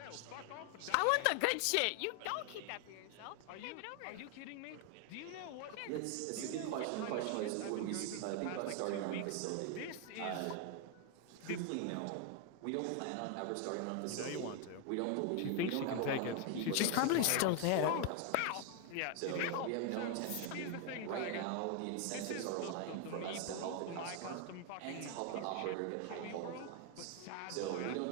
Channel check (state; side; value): different; both; correlation 0.01